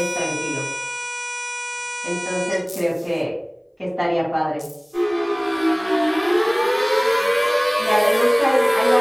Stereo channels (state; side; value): identical; both; correlation 1.00